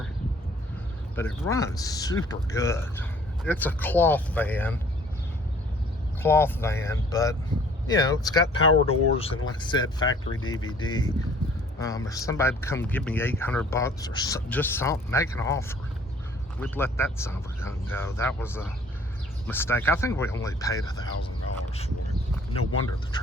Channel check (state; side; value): normal; both; correlation 0.55